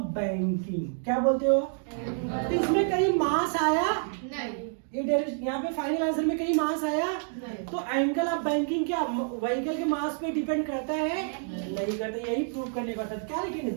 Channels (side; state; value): left; silent; 59 dB below the other